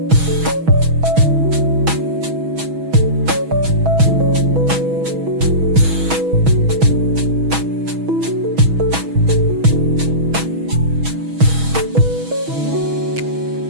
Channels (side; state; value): left; late; 6.2 ms